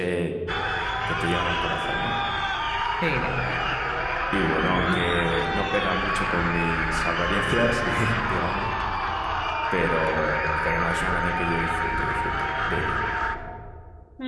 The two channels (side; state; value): both; identical; correlation 1.00